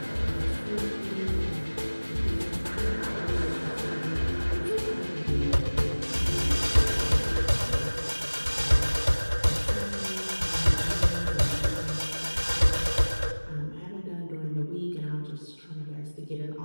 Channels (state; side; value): inverted; both; correlation -1.00